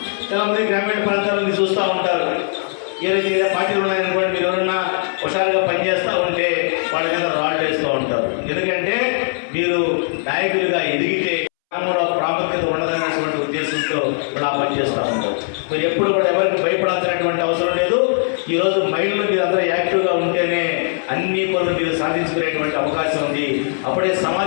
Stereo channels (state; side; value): silent; right; 66 dB below the other